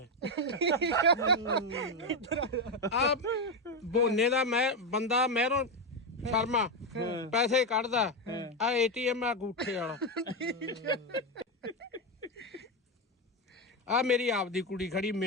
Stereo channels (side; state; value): both; normal; correlation 0.09